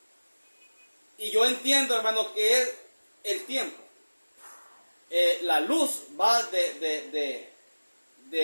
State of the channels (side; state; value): both; inverted; correlation -1.00